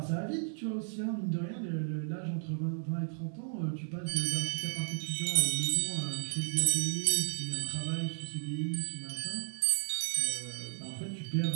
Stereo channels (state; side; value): silent; left; digital silence